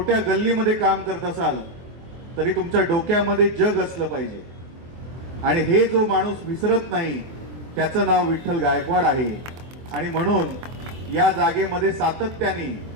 गल्लीमध्ये काम करत असाल तरी तुमच्या डोक्यामध्ये जग असलं पाहिजे. आणि हे जो माणूस विसरत नाही त्याचं नाव विठ्ठल गायकवाड आहे. आणि म्हणून या जागेमध्ये सातत्याने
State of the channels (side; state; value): left; late; 24 ms